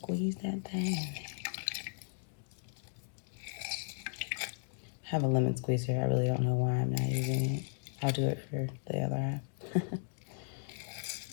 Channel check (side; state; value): right; silent; digital silence